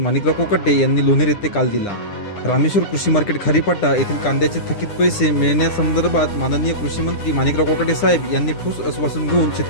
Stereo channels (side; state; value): right; late; 9.9 ms